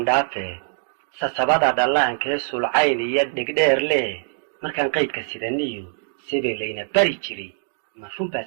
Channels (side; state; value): left; silent; digital silence